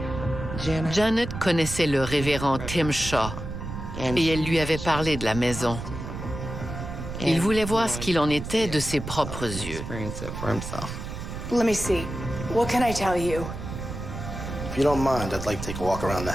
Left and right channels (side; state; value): right; noise; rumble, 7 dB below the sound